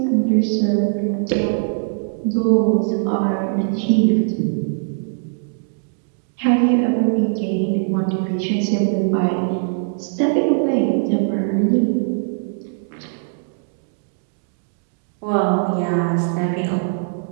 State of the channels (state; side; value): silent; left; digital silence